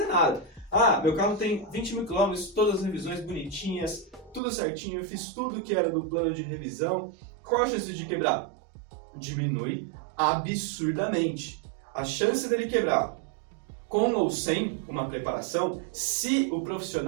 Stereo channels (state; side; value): drops out; left; at 4.4 s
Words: nada. Meu carro tem 20 mil quilômetros, todas as revisões bonitinhas, tudo certinho, eu fiz tudo que era do plano de revisão. Qual a chance de quebrar? Diminui absurdamente. A chance dele quebrar com ou sem uma preparação, se o